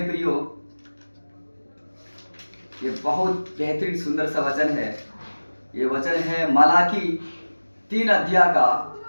प्रियो, ये बहुत बेहतरीन सुंदर सा वचन है। ये वचन है मलाकी 3 अध्याय का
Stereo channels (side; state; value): both; inverted; correlation -1.00